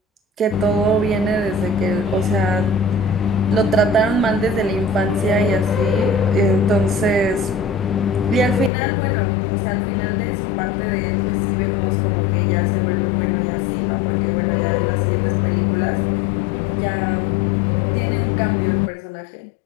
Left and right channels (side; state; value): right; drops out; at 8.7 s